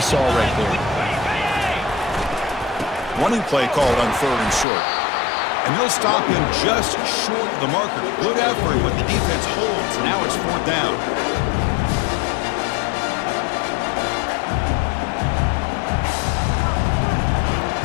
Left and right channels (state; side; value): drops out; right; at 4.7 s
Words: right there. Running play called on 3rd and short. And they'll stop him just short of the marker. Good effort, but the defense holds. Now it's 4th down.